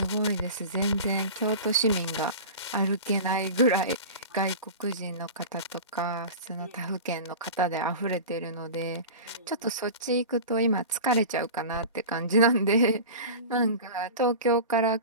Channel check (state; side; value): inverted; both; correlation -0.32